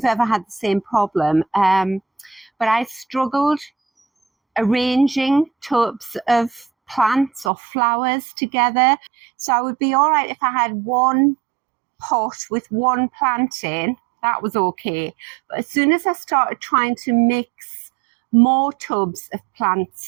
ever had the same problem, but I struggled arranging tubs of plants or flowers together. So I would be all right if I had one pot with one plant in, that was okay. But as soon as I started trying to mix more tubs of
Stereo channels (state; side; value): drops out; left; at 7.5 s